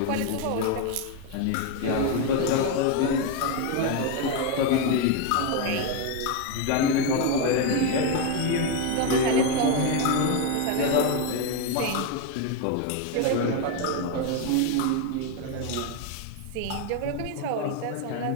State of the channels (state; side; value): different; both; correlation 0.02